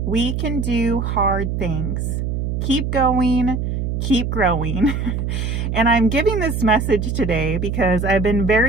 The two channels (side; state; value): right; noise; hum, 1 dB below the sound